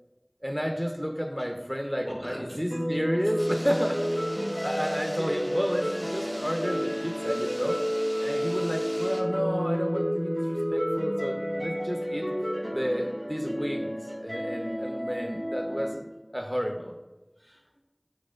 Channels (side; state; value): both; identical; correlation 1.00